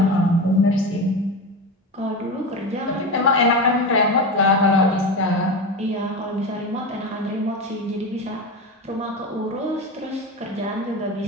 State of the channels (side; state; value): both; normal; correlation 0.22